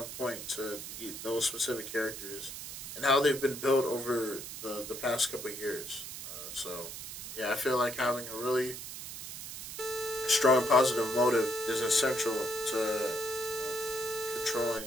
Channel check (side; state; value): right; noise; hiss, 9 dB below the sound